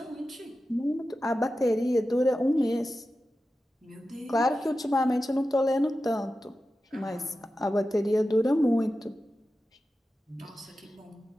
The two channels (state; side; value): normal; both; correlation 0.93